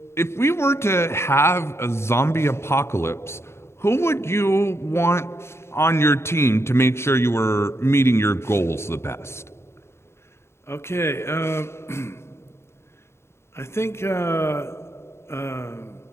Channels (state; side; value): late; right; 0.13 ms